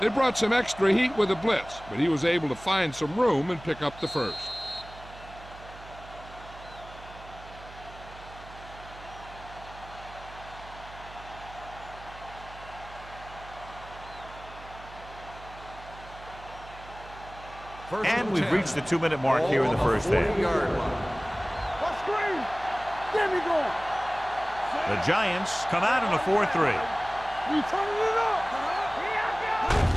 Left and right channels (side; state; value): right; noise; hum, 17 dB below the sound